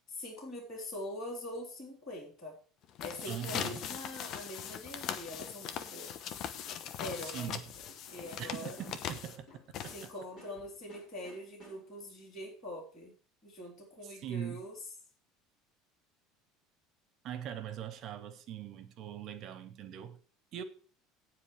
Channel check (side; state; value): both; normal; correlation 0.35